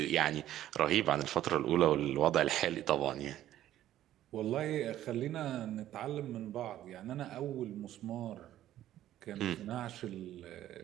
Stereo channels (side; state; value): left; quieter; 12.8 dB